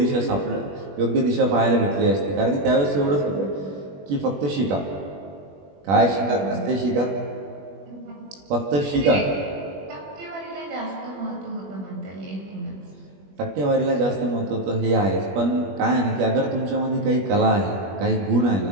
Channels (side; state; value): left; late; 21 ms